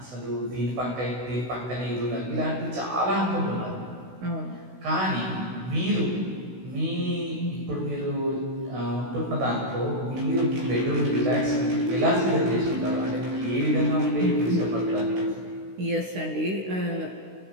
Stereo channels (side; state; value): left; late; 16 ms